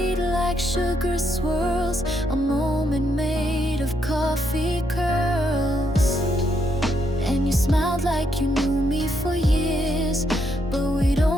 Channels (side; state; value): both; normal; correlation 0.77